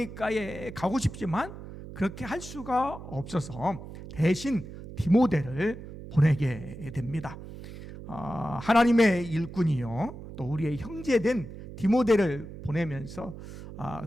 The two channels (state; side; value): noise; right; hum, 13 dB below the sound